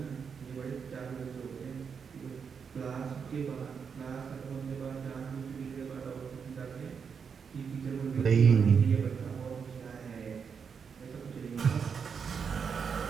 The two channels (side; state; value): left; quieter; 6.4 dB